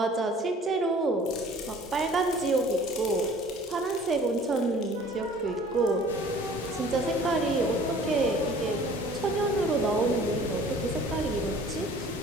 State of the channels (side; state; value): both; normal; correlation 0.50